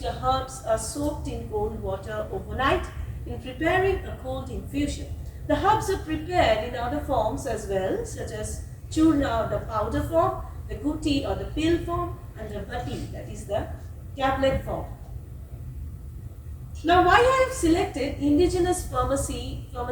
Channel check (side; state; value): both; identical; correlation 1.00